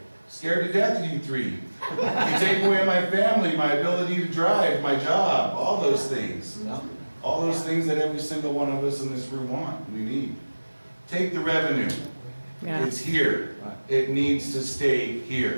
Scared to death of you three. You take away my family, my ability to drive, my job, all those things. All those things that every single one of us in this room want, we need. Take the revenue. Yeah. It's here. It needs to stay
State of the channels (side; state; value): both; inverted; correlation -1.00